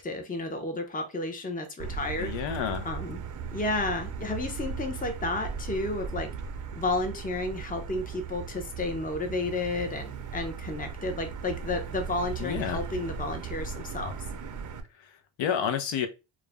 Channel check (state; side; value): normal; both; correlation 0.11